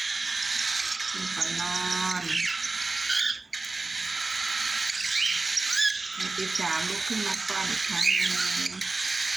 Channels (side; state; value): left; quieter; 3.5 dB